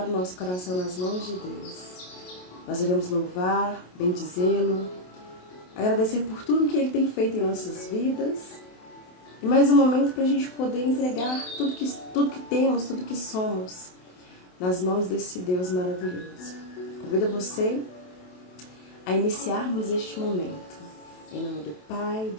o nosso coração nas mãos de Deus. Nós iremos louvar, bendizê-lo, agradecer por tudo que Ele tem feito em nossas vidas e mais um momento para a gente poder entregar tudo que temos, tudo que somos nas mãos desse Deus maravilhoso. Convido você a iniciarmos este momento. Em nome do Pai,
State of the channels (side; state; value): right; late; 28 ms